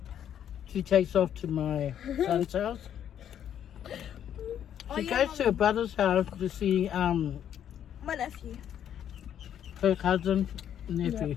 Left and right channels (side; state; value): right; quieter; 9.8 dB